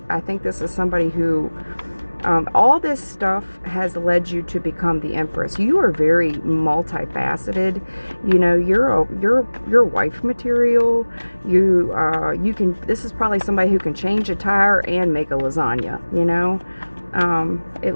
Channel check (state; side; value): inverted; both; correlation -1.00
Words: I think this is somebody who, all this stuff has led you to become the Empress. You are very multifaceted. You know, you're wife material. You can. This is probably somebody who can change a tire and make a lasagna. You know,